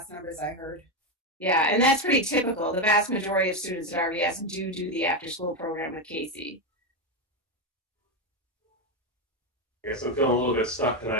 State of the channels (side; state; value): both; normal; correlation 0.10